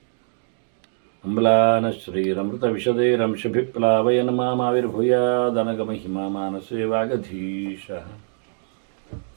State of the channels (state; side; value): silent; left; digital silence